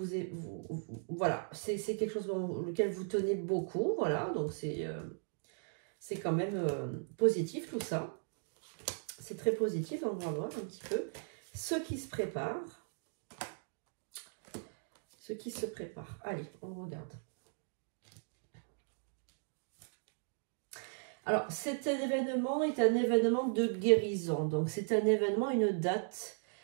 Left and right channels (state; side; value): silent; left; digital silence